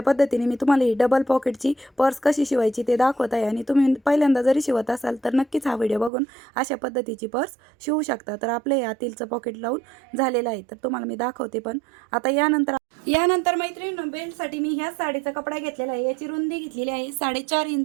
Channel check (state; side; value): drops out; left; at 6.1 s